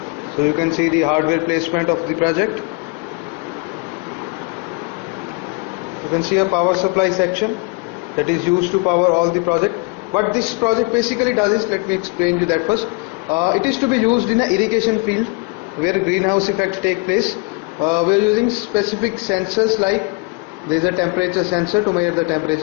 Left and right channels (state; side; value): quieter; right; 29.6 dB